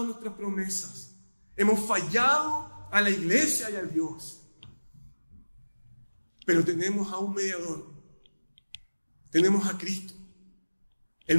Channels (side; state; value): both; inverted; correlation -1.00